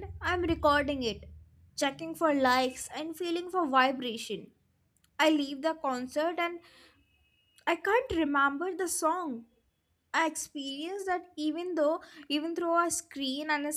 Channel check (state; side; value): identical; both; correlation 1.00